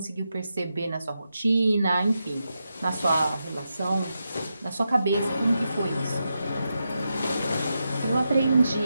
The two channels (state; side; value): inverted; both; correlation -0.87